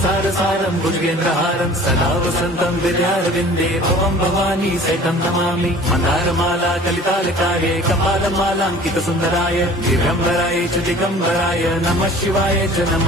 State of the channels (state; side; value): normal; both; correlation 0.46